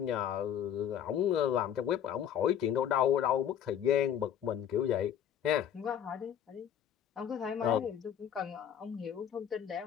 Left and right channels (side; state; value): right; quieter; 9.5 dB